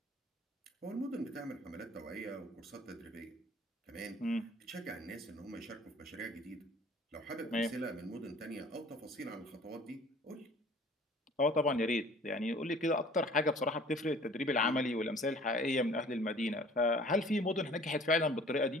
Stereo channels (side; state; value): both; normal; correlation 0.50